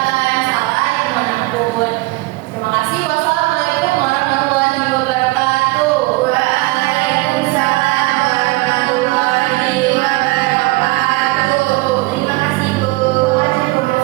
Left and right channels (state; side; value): quieter; left; 22.6 dB